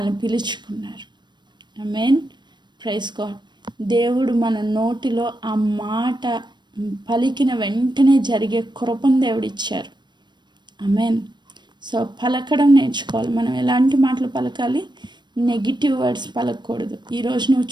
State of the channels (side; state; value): left; late; 0.22 ms